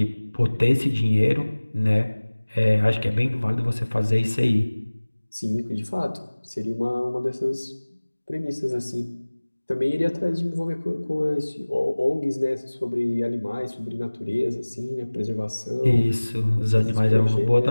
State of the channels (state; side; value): inverted; both; correlation -1.00